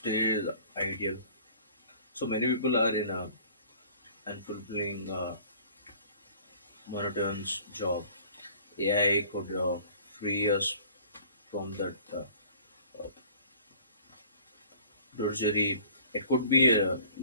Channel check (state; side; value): inverted; both; correlation -0.50